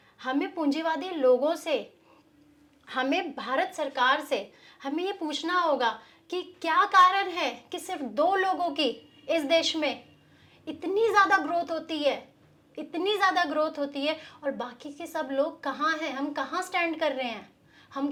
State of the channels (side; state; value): both; identical; correlation 1.00